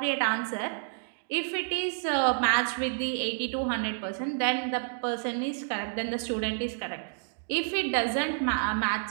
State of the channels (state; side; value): silent; left; digital silence